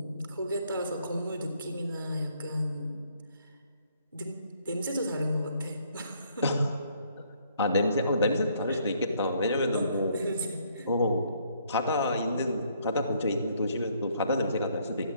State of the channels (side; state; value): both; inverted; correlation -0.67